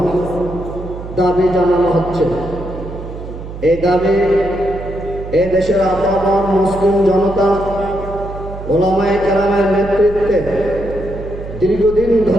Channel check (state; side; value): noise; right; hum, 11 dB below the sound